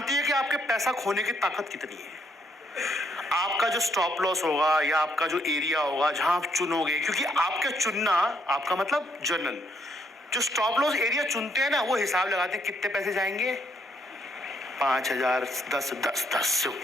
है कि आपके पैसा खोने की ताकत कितनी है। आपका जो स्टॉप लॉस होगा या आपका जो एरिया होगा जहां आप चुनोगे, क्योंकि आपका चुनना, आपका मतलब जर्नल जो स्टॉप लॉस एरिया चुनते हैं ना, वो हिसाब लगाते हैं कितने पैसे जाएंगे, 5,000, 10 से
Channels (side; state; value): both; normal; correlation 0.72